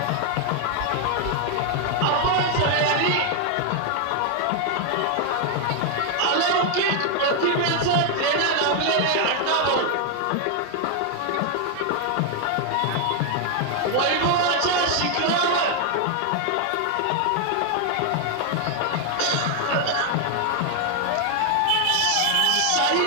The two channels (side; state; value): both; different; correlation 0.00